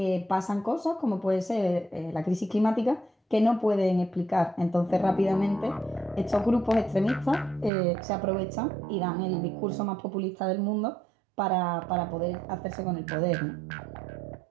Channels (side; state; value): left; drops out; at 7.7 s